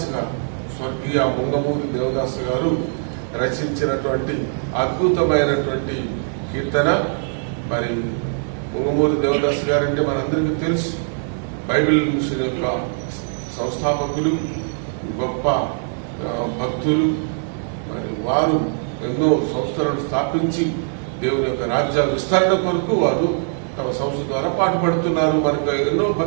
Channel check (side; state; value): left; silent; 65 dB below the other